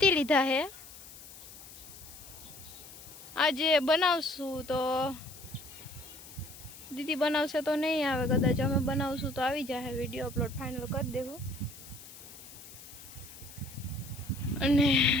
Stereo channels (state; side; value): noise; left; hiss, 16 dB below the sound